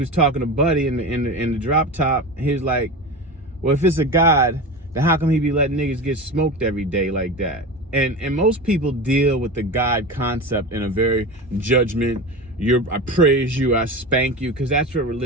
talking to Buddy in the drop top. He was like, well, if it's a God, then how come he be letting niggas get smoked every day like that? And most people deal with the God concept in a very judgment, I praise you, I spank you, because that's what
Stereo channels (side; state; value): both; normal; correlation 0.27